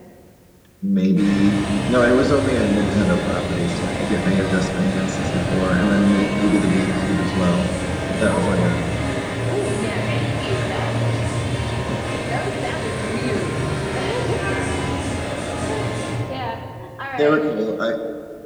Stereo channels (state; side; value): identical; both; correlation 1.00